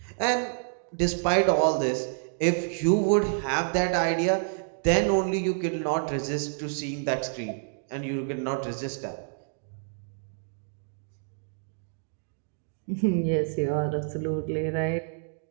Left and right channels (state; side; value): silent; left; digital silence